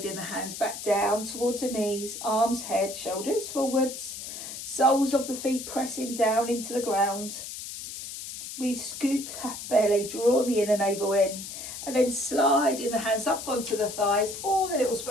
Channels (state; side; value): noise; left; hiss, 9 dB below the sound